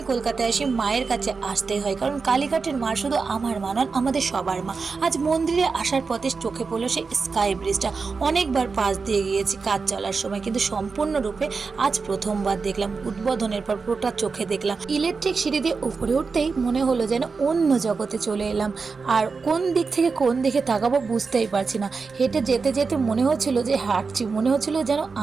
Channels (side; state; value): left; quieter; 4.7 dB